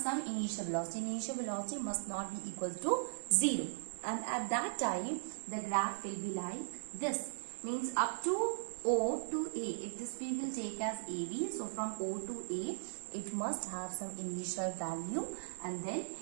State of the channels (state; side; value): silent; left; digital silence